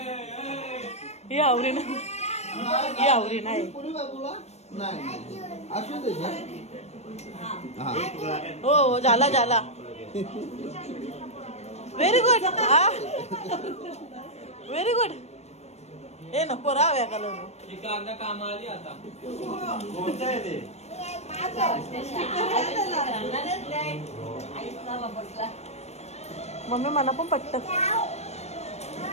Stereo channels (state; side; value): late; right; 0.31 ms